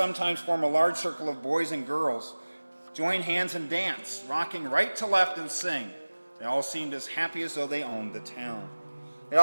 form a large circle of boys and girls, join hands and dance, rocking right to left and sing. They all seemed as happy as though they owned the town. They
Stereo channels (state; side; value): inverted; both; correlation -1.00